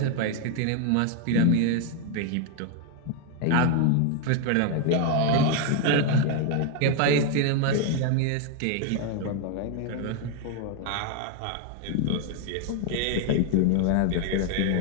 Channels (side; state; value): both; different; correlation 0.01